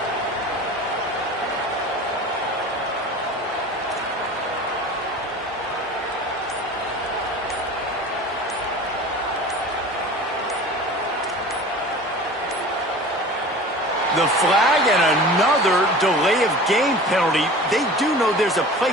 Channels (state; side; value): normal; both; correlation 0.39